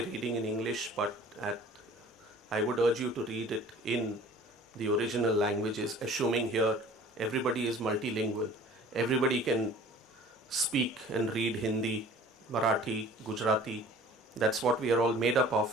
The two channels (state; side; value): normal; both; correlation 0.47